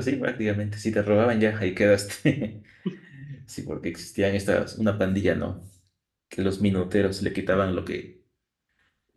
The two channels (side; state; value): both; identical; correlation 1.00